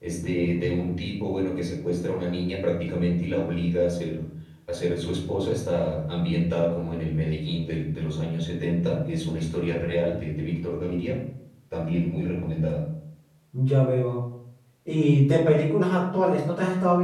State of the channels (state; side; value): identical; both; correlation 1.00